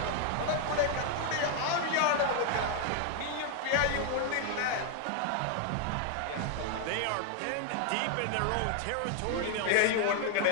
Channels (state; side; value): different; both; correlation 0.00